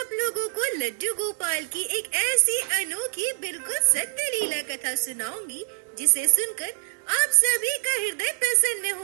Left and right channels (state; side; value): silent; left; digital silence